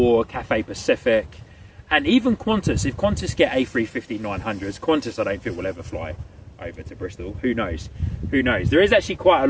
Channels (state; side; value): identical; both; correlation 1.00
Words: Cathay Pacific, and even Qantas. If Qantas get A350-900s, Qantas I don't think will ever fly over to Bristol. Who knows? Who knows? There is actually quite a